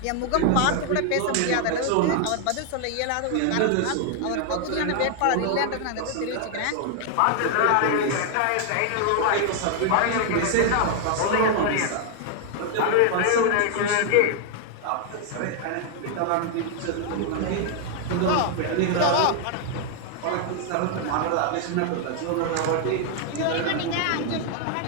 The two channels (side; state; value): both; different; correlation 0.00